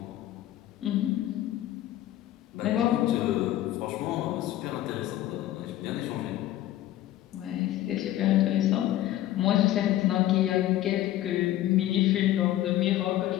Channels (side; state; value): right; quieter; 13.8 dB